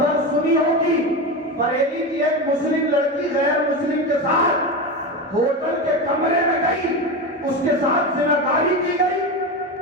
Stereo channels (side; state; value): both; normal; correlation 0.20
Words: سنی ہوگی، بریلی کی ایک مسلم لڑکی غیر مسلم کے ساتھ ہوٹل کے کمرے میں گئی، اس کے ساتھ زناکاری کی گئی،